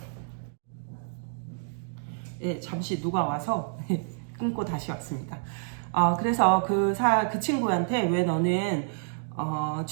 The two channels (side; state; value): left; silent; digital silence